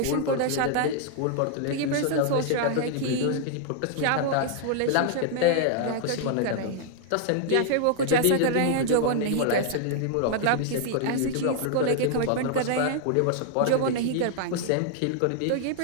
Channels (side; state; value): both; different; correlation -0.01